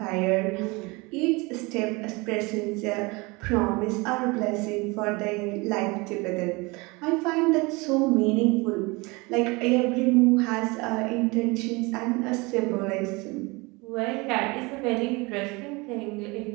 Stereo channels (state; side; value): quieter; left; 25.5 dB